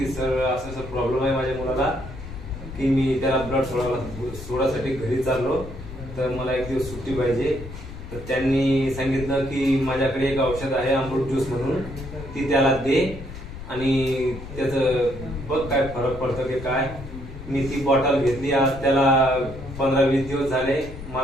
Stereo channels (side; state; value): left; noise; rumble, 12 dB below the sound